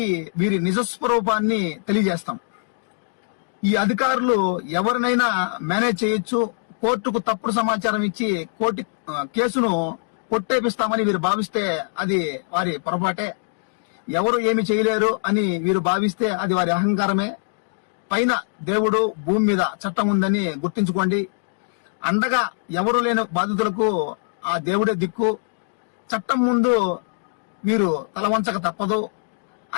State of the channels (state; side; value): silent; right; digital silence